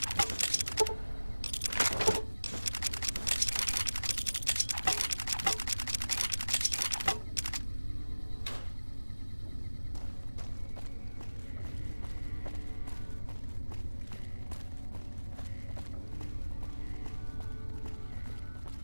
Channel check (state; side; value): inverted; both; correlation -1.00